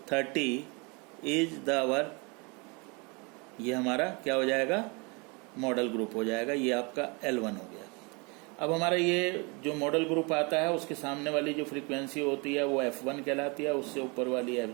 30 इज द आवर, ये हमारा क्या हो जाएगा, मॉडल ग्रुप हो जाएगा। ये आपका L1 हो गया। अब हमारा ये जो मॉडल ग्रुप आता है, उसके सामने वाली जो फ्रीक्वेंसी होती है वो F1 कहलाती है, उससे ऊपर वाली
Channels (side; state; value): left; quieter; 30.0 dB